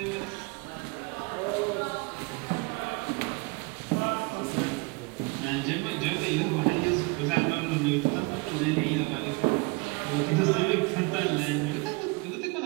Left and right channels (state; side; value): quieter; left; 27.9 dB